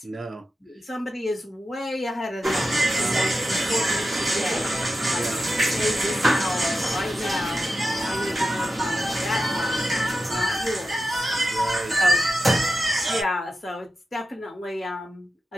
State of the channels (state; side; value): normal; both; correlation 0.91